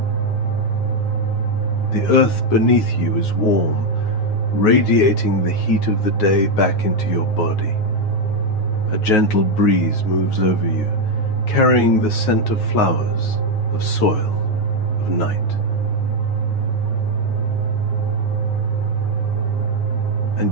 The earth beneath you is warm, radiating the heat of the day back into your body. A gentle breeze moves over you, carrying the scent of flowers, of soil, of night.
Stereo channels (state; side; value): late; right; 9.5 ms